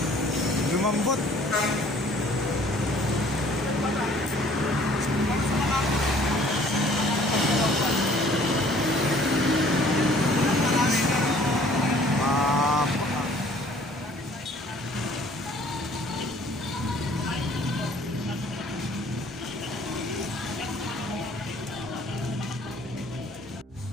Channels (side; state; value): both; normal; correlation 0.56